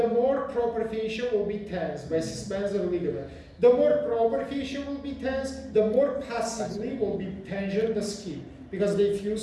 more proper fascia will be tense by suspensor ligament. The more proper fascia will be tense, the more passively will be tension the skin, because they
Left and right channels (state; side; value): identical; both; correlation 1.00